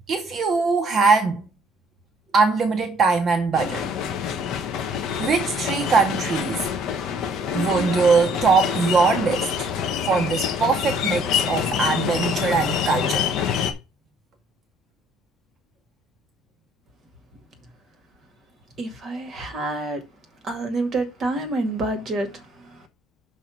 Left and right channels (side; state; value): both; normal; correlation 0.62